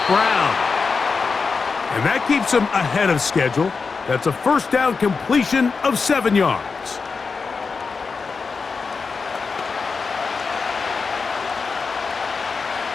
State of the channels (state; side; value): quieter; right; 4.8 dB